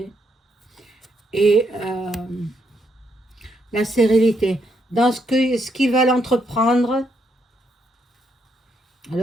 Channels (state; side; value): normal; both; correlation 0.76